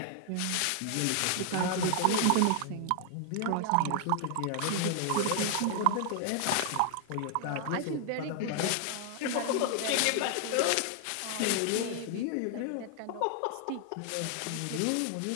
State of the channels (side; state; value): both; different; correlation 0.00